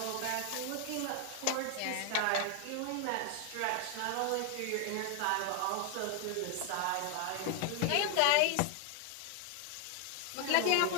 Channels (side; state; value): both; different; correlation 0.00